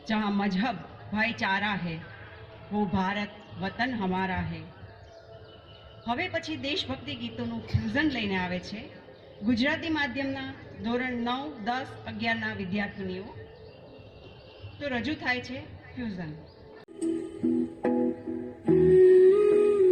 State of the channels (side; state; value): both; identical; correlation 1.00